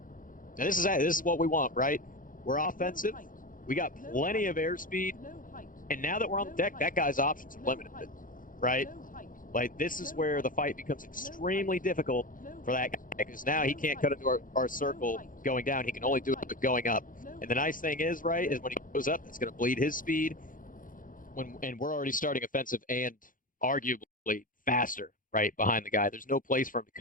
And this is what we want, right? We're offensive. We got plenty of airspeed. And now that we're on the deck, that guy's options are limited, right? Like, this is where the fight becomes extremely difficult for that guy, because now he can't cut into our circle going down. He can only do it going up. And the nice thing is, right, is when he goes up, it's going to bleed his speed. And we're already starting offensive and arguably faster, right, behind the guy. There's no place for him to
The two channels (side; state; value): right; late; 0.39 ms